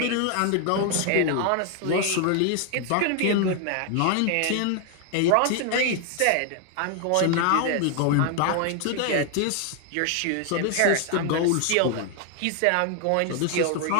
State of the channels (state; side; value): different; both; correlation 0.00